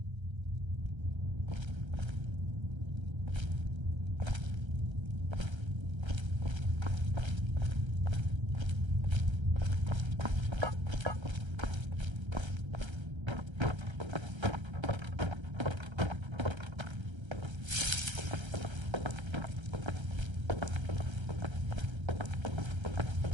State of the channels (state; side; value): late; left; 1.3 ms